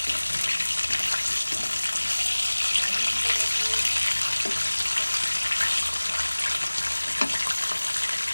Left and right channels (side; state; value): both; inverted; correlation -1.00